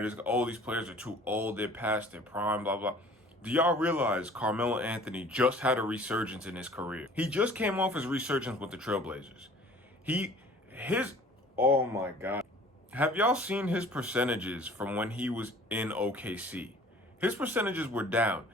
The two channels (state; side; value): normal; both; correlation 0.49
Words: is. Oh, these players are too old. They're past their prime, blah, blah. Do y'all realize Carmelo Anthony just had a resurgence in his career? He just came off his resurgence with the Trailblazers. Oh my God. Have y'all seen his percentages from when he was in OKC? His percentages were down.